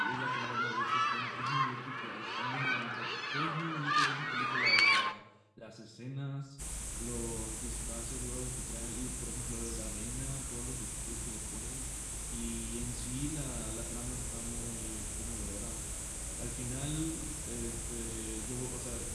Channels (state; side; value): identical; both; correlation 1.00